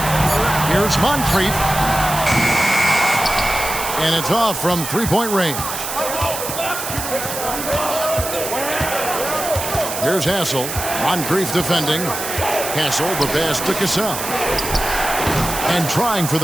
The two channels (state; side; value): noise; right; hiss, 6 dB below the sound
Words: Here's Moncrief. And it's off from 3-point range. Here's Hassel. Moncrief defending. Hassel, the pass to Cassell. And trying for